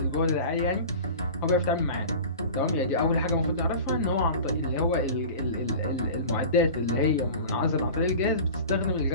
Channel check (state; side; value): inverted; both; correlation -0.36